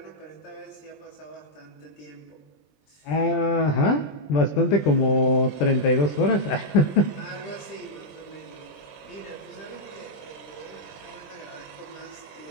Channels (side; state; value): right; late; 20 ms